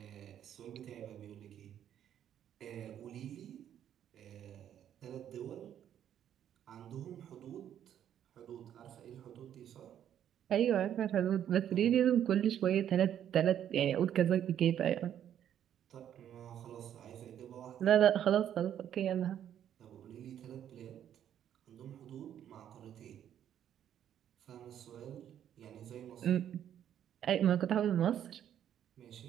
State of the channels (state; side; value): quieter; left; 10.1 dB